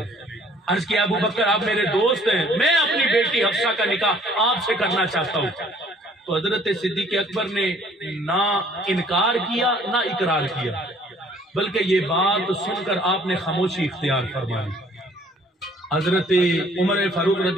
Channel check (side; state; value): both; normal; correlation 0.58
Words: عرض کیا ابو بکر آپ میرے دوست ہیں، میں اپنی بیٹی حفصہ کا نکاح آپ سے کرنا چاہتا ہوں۔ تو حضرت صدیق اکبر نے نہ انکار کیا نہ اقرار کیا، بلکہ یہ بات سن کر آپ نے خاموشی اختیار فرمائی۔ حضرت عمر فاروق